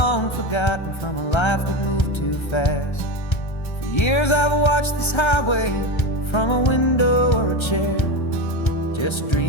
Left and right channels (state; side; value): late; right; 1.3 ms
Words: forgotten from a life that moved too fast. For years I've watched this highway from a window or a chair, just